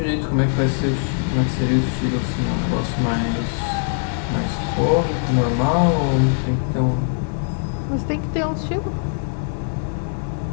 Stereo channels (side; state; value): right; silent; digital silence